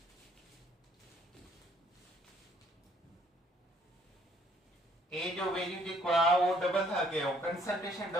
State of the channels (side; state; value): both; normal; correlation 0.64